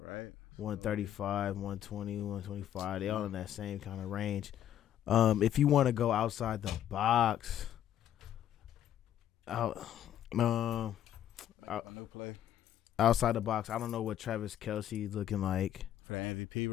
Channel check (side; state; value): right; quieter; 11.1 dB